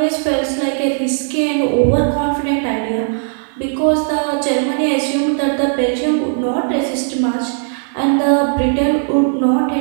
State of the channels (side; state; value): left; silent; digital silence